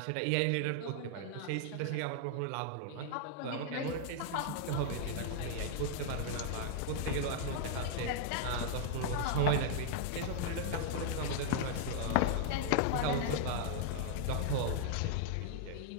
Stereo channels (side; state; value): both; different; correlation -0.01